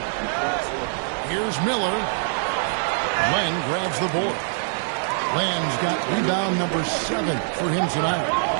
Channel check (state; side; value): silent; left; 63 dB below the other